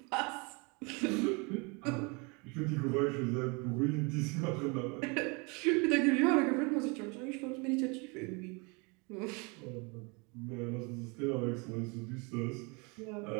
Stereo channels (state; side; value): quieter; left; 30.2 dB